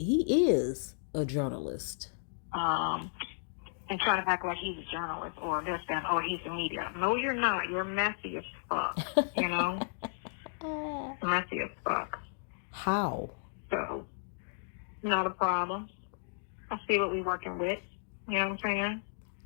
is a journalist. And trying to act like he's a journalist or this, that, or he's a media. No, you're not. You're messy as fuck, Messy as fuck. How? So, not a problem. I see what we're working with. You know what I'm saying?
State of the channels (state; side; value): silent; right; digital silence